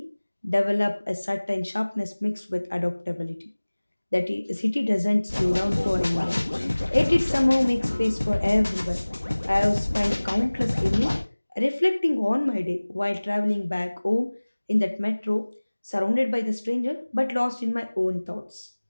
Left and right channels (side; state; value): both; inverted; correlation -1.00